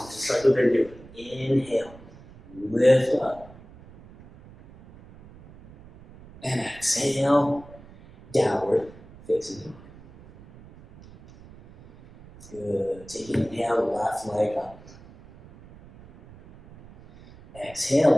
just like we've been doing. Inhale, lift up. And exhale, downward facing dog. Good. Take an inhale, left leg up.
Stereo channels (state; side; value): noise; right; rumble, 21 dB below the sound